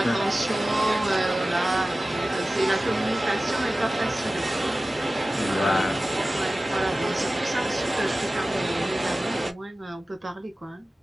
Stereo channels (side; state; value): both; normal; correlation 0.96